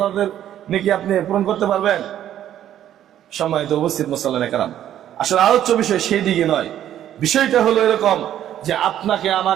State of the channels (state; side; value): quieter; left; 11.3 dB